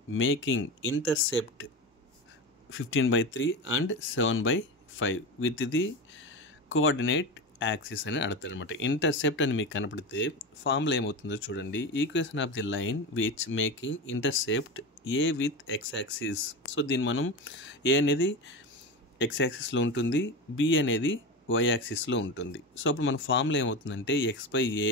making intercept 15/3 and 7/5 with the coordinate axis అని అడుగుతారు అనమాట. ఇంటర్సెప్ట్ అని మీకు కనపడితే ఫార్ములా ఏమవుతుందో చూడండి. Equation of the line which making intercept A with X axis. So దీన్ని మనం ఏ అనేది ఎక్స్ యాక్సిస్లో ఉంటుంది, బి అనేది వై యాక్సిస్లో ఉంటుంది. సో అప్పుడు మన ఫార్ములా ఏమవుతుందంటే x/a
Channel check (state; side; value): normal; both; correlation 0.23